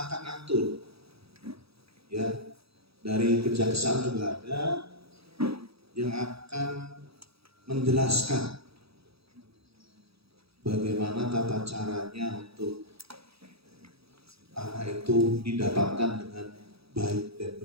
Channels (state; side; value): late; left; 0.77 ms